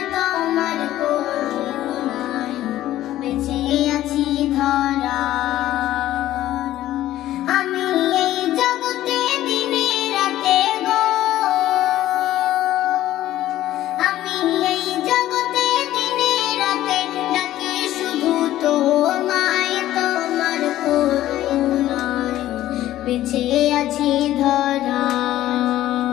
তোমার করুণায় বেঁচে আছি ধরা। আমি এই জগতে দিনে রাতে গো, আমি এই জগতে দিনে রাতে ডাকি শুধু তোমায়, তোমার করুণায় বেঁচে আছি ধরা।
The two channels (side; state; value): right; quieter; 13.9 dB